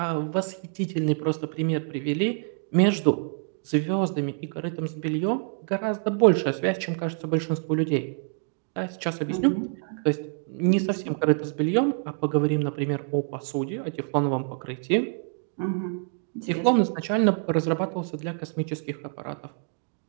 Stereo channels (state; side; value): silent; left; 59 dB below the other